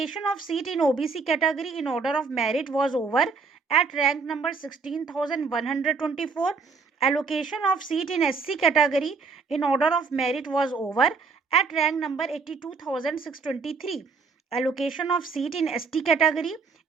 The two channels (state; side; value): quieter; left; 4.8 dB